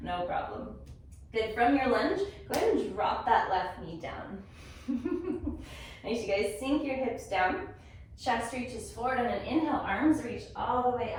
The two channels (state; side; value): identical; both; correlation 1.00